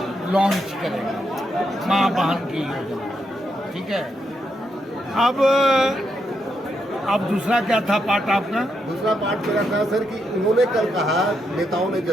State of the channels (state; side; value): normal; both; correlation 0.81